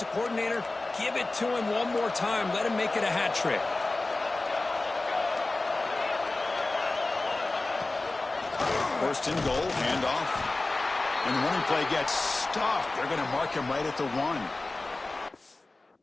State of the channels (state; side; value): quieter; right; 3.1 dB